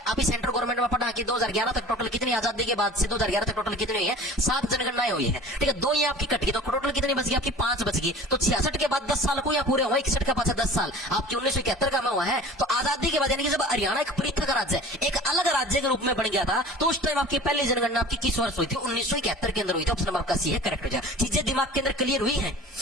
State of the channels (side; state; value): both; normal; correlation 0.42